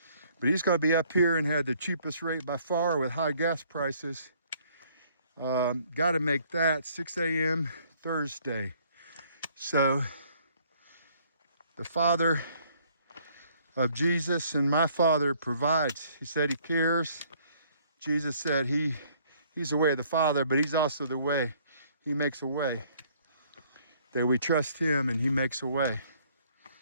But he's going to be up here and had the cheapest rate by far with high gas prices. Got to make that 6 a.m. Thursday. So the Father of Jesus and my Father provides. He said he cares. Jesus said he's the way of the Father, but he's also the way. He makes a way. That we trust him and he makes a way.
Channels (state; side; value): inverted; both; correlation -0.62